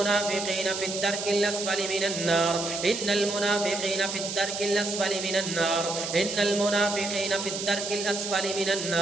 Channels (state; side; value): noise; right; hiss, 5 dB below the sound